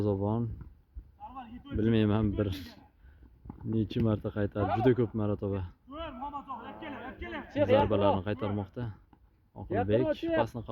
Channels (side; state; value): both; identical; correlation 1.00